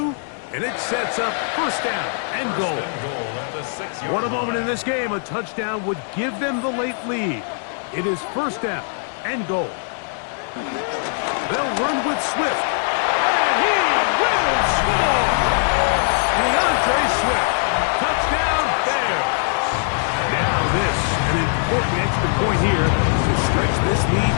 and it sets up 1st down and goal. What a moment in this game. A touchdown would give them the late lead. It is 1st down and goal. They'll run with Swift, and he will score! DeAndre Swift, touchdown Bears. Now this, an important extra point here to stretch this lead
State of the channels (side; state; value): right; silent; 65 dB below the other